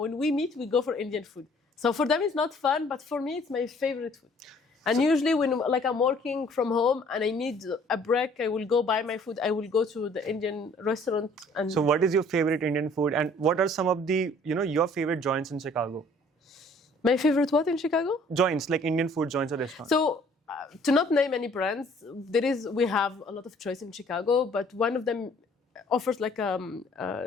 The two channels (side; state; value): both; normal; correlation 0.57